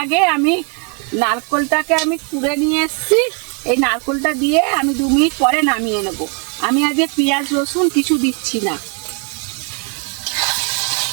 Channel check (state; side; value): quieter; left; 38.3 dB